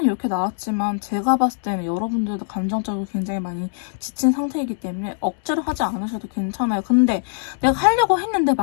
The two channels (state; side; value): silent; right; digital silence